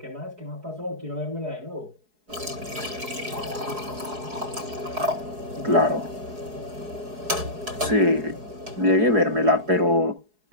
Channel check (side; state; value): left; late; 4.7 ms